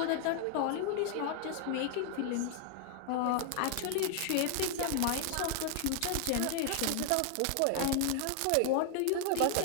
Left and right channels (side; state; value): both; different; correlation 0.00